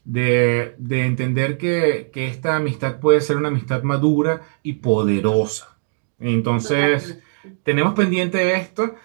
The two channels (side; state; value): left; silent; digital silence